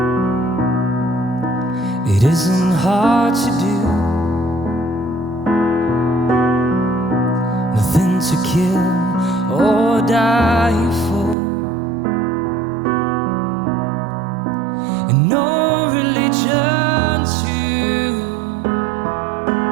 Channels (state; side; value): drops out; left; at 11.4 s